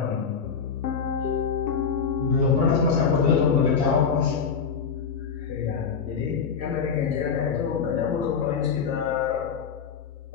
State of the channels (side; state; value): right; quieter; 6.2 dB